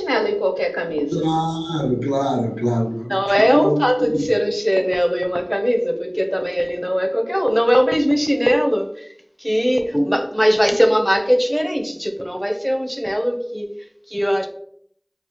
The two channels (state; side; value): identical; both; correlation 1.00